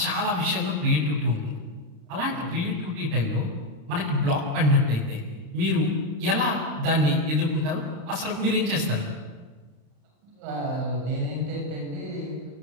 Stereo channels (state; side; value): late; left; 35 ms